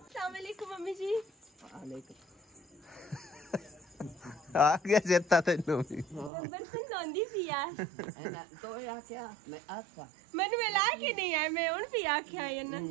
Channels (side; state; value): left; drops out; at 6.3 s